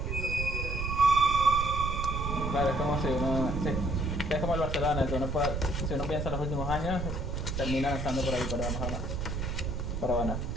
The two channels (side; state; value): right; noise; rumble, 3 dB below the sound